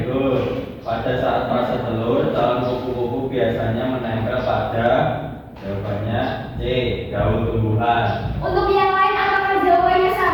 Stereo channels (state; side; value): identical; both; correlation 1.00